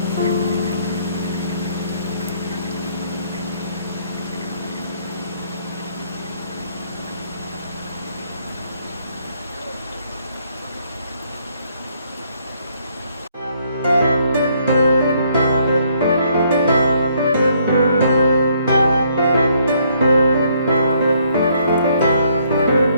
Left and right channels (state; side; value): inverted; both; correlation -0.68